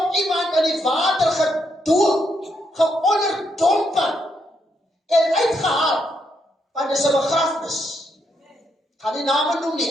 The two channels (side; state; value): both; normal; correlation 0.78